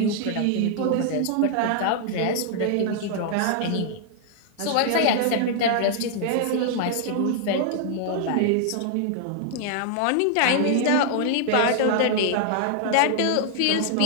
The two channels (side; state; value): both; different; correlation -0.01